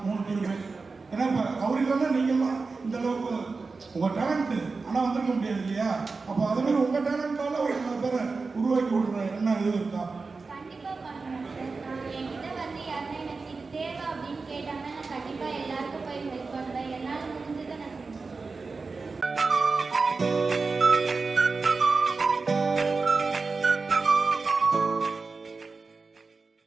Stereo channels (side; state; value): left; quieter; 4.2 dB